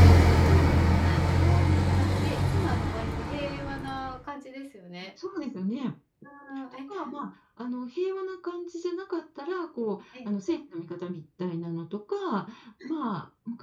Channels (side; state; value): both; identical; correlation 1.00